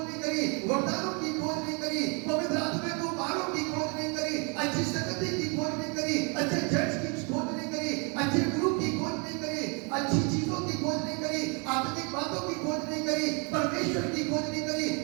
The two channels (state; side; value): quieter; left; 33.8 dB